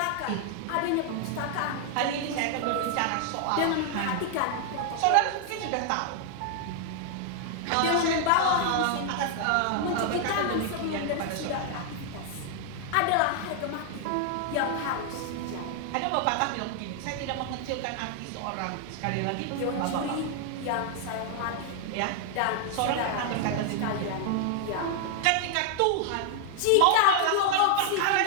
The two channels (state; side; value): different; both; correlation 0.00